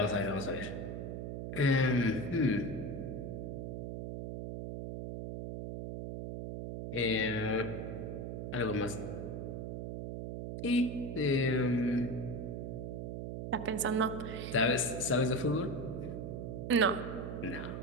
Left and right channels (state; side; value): noise; right; hum, 5 dB below the sound